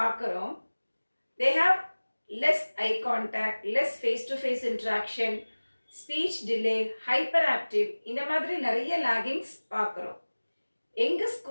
They have less eye contact, less face to face interaction, speech delay, hyperactive, இந்த மாதிரி நிறைய லாகிங்ஸ் பார்க்குறோம். எங்கள்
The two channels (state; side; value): inverted; both; correlation -1.00